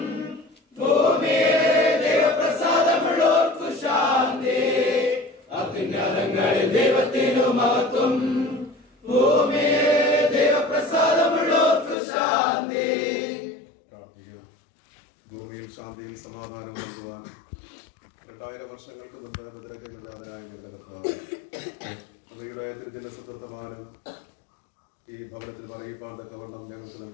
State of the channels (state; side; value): drops out; right; at 12.0 s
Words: ഭൂമിയിലെ ദൈവപ്രസാദമുള്ളോർക്കു ശാന്തി. അത്യുന്നതങ്ങളിൽ ദൈവത്തിനു മഹത്വം, ഭൂമിയിലെ ദൈവപ്രസാദമുള്ളോർക്കു ശാന്തി. ഭൂമിയിൽ ശാന്തിയും സമാധാനം നൽകുവാൻ 2000 വർഷങ്ങൾക്ക് മുമ്പ് മുദ്രയ്ക്കെതിരായ ഹൃദയത്തിന്റെ സുഹൃത്തമാനം ഈ ഭവനത്തിൽ അറിയിപ്പാൻ തക്കവണ്ണം ഞങ്ങൾക്ക്